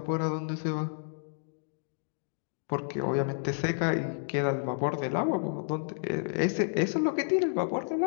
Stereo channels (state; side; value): silent; right; digital silence